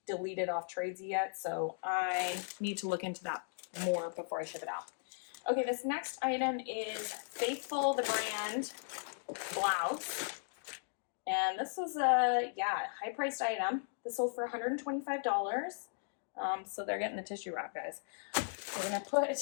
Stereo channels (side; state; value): right; silent; digital silence